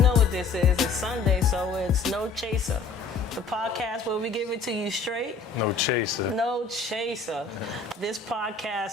what this is. It's Sunday, so it's No Chaser. The podcast where we give it to you straight. No chaser. No chaser. This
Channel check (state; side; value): quieter; right; 4.6 dB